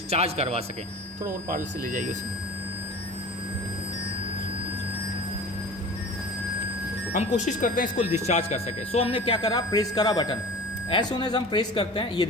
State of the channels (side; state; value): both; normal; correlation 0.38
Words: करवा सकें। थोड़ा और पार्ल से ले जाइए उसे। हम कोशिश करते हैं इसको डिस्चार्ज कर सके। सो हमने क्या करा, प्रेस करा बटन। एज सून एज हम प्रेस करते हैं, ये